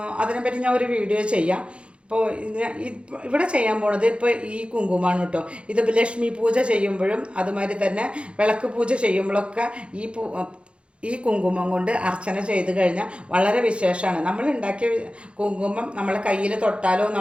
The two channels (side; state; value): left; late; 0.058 ms